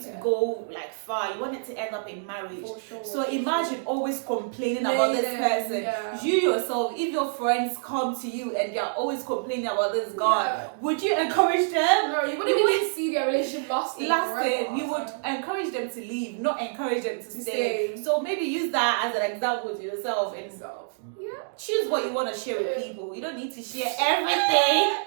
to go like far. You want it to end up in marriage. For sure. So imagine always complaining about this person. Yeah. You yourself, if your friends come to you and they're always complaining about this guy, would you encourage them? No, you wouldn't even see their relationship lasting. We would encourage them to leave, not encourage them to stay. So maybe use that as an example to yourself and choose what you want to share with people. You don't need to share everything.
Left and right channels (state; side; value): silent; left; digital silence